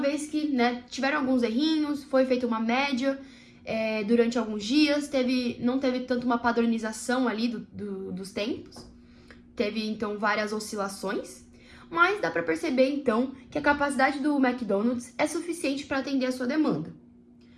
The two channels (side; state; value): both; identical; correlation 1.00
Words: que tiveram alguns errinhos, foi feita uma média durante alguns dias, não teve tanto uma padronização ali dos tempos, teve então várias oscilações. Mas dá para perceber, então, que a capacidade do McDonald's é suficiente para atender a sua demanda.